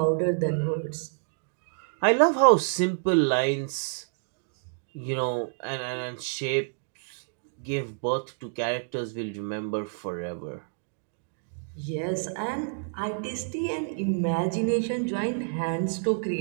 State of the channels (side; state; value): left; silent; digital silence